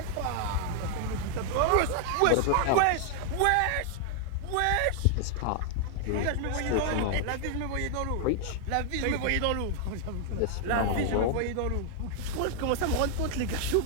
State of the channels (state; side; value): different; both; correlation 0.00